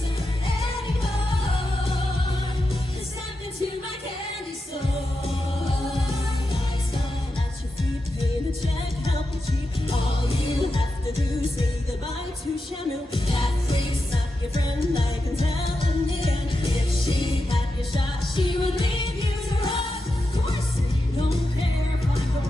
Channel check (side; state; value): both; normal; correlation 0.89